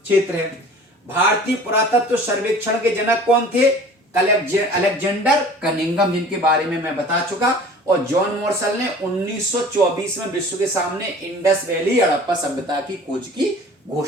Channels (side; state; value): both; normal; correlation 0.45